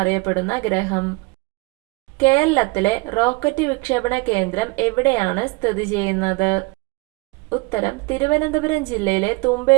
ഗ്രഹം. കേരളത്തിലെ റോക്കറ്റ് വിക്ഷേപണ കേന്ദ്രം എവിടെയാണ് സ്ഥിതി ചെയ്യുന്നത്? ഉത്തരം തിരുവനന്തപുരം ജില്ലയിലെ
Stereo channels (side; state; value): left; quieter; 26.2 dB